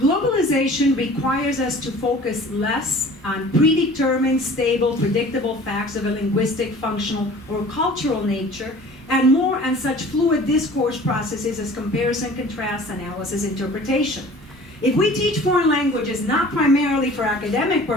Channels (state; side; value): normal; both; correlation 0.46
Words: requires us to focus less on predetermined, stable, predictable facts of a linguistic, functional, or cultural nature, and more on such fluid discourse processes as comparison, contrast, analysis, interpretation. If we teach foreign languages not primarily for academic